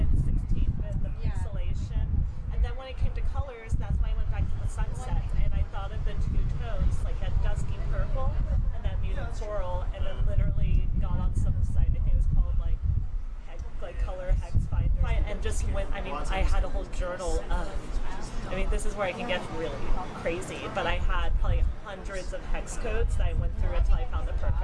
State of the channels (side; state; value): both; identical; correlation 1.00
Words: 16-bit, the pixelation. And then when it came to colors, that's when I went back to the sunset, and I thought of the two tones, like that dusky purple and that muted coral, and then literally got on some site, I think it was called like Color Hex Finder, and just went, I mean, I had a whole journal of, I mean, this is where I can get really crazy, but I had probably hundreds of hex codes that I went through until I found the